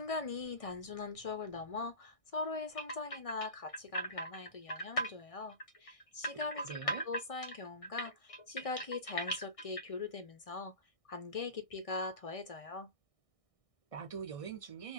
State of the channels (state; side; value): late; right; 1.6 ms